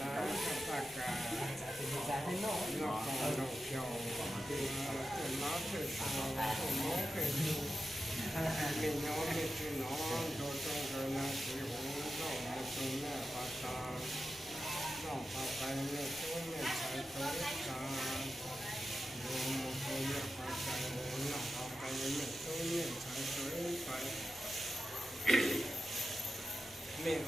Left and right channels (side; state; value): both; normal; correlation 0.91